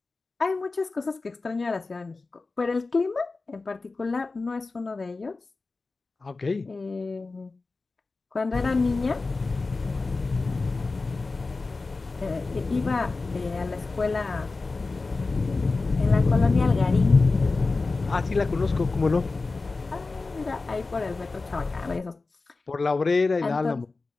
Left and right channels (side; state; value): right; quieter; 3.7 dB